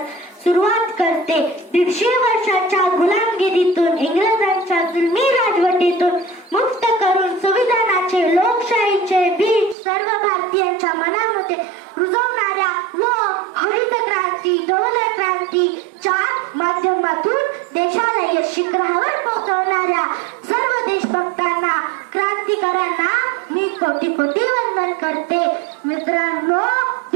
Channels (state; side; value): drops out; left; at 9.8 s